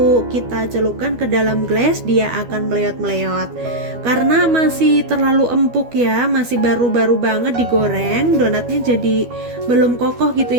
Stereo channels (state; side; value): late; left; 12 ms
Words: kita celupkan ke dalam gelas dia akan meleot-meleot. Karena masih terlalu empuk ya, masih baru-baru banget digoreng, donatnya jadi belum kokoh gitu